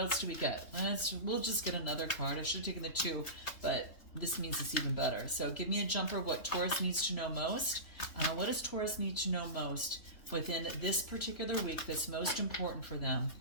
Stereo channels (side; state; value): right; late; 3.0 ms